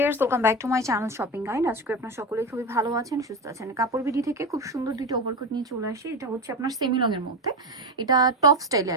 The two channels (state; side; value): normal; both; correlation 0.18